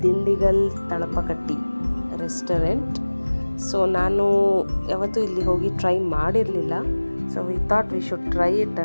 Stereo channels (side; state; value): both; inverted; correlation -1.00